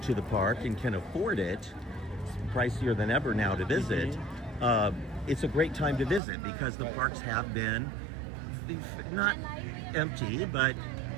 to the park and can afford it, it's pricier than ever now to visit, it's a great time to visit because the parks have been not empty, but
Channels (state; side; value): drops out; left; at 6.2 s